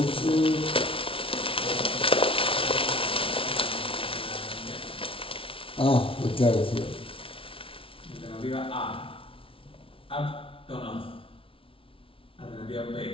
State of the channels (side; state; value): right; late; 0.26 ms